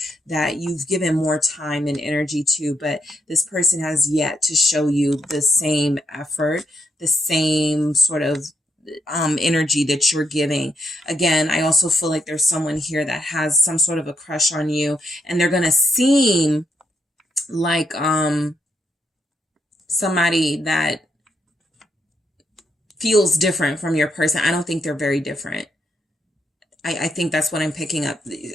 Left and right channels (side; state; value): both; normal; correlation 0.77